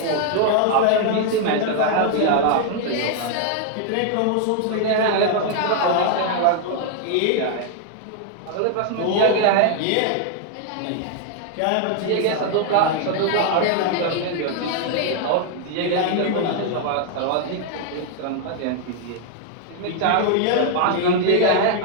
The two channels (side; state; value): both; different; correlation 0.00